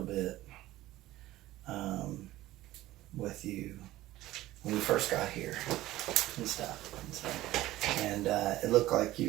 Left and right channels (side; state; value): left; quieter; 16.1 dB